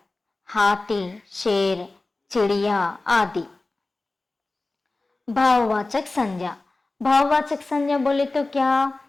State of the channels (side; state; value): right; quieter; 3.2 dB